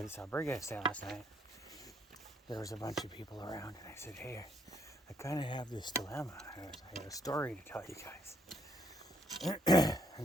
this albergue I stayed last night, there was a bunch of people around, and I said, hey, I kind of have this dilemma. I got a story to tell you guys.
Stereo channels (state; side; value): normal; both; correlation 0.71